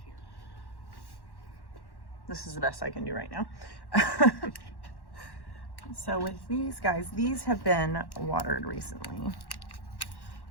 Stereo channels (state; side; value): late; right; 1.1 ms